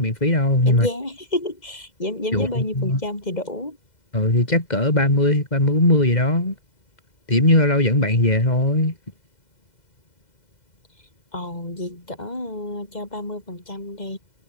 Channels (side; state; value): right; late; 2.0 ms